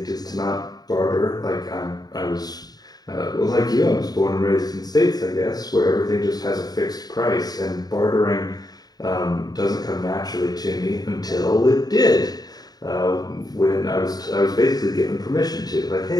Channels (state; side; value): late; right; 0.19 ms